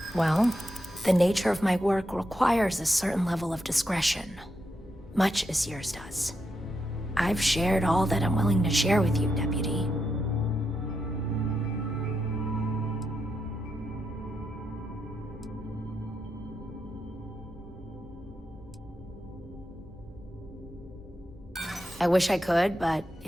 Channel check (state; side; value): normal; both; correlation 0.84